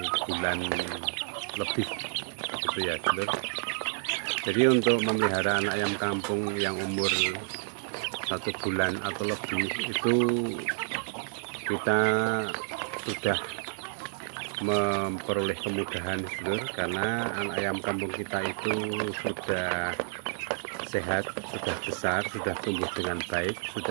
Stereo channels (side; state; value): left; silent; digital silence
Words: bulan lebih, gitu ya sedulur. Jadi untuk memelihara anak ayam kampung yang umur 1 bulan atau lebih itu kita sudah memperoleh kemudahan sedulur, karena anak ayam kampung kita itu sudah sehat, sudah besar, sudah tumbuh dengan baik,